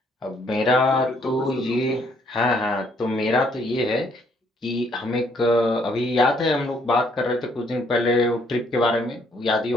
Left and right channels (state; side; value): normal; both; correlation 0.67